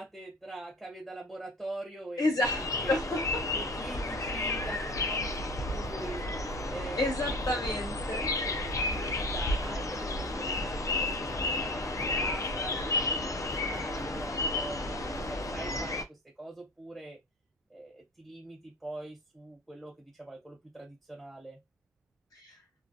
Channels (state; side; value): normal; both; correlation 0.35